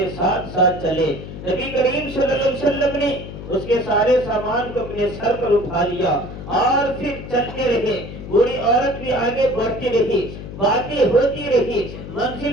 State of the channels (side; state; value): left; noise; hum, 11 dB below the sound